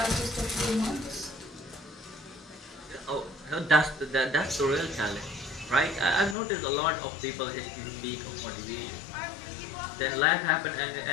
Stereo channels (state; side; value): drops out; right; at 6.4 s